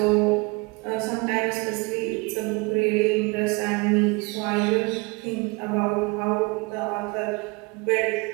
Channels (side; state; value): left; quieter; 27.1 dB